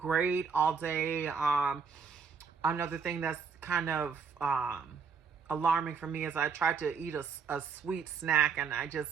all day. Another thing that's kind of alarming for me is I tried to eat a sweet snack, and I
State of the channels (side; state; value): left; quieter; 5.8 dB